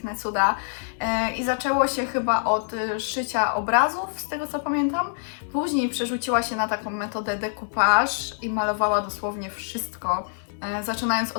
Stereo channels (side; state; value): right; silent; digital silence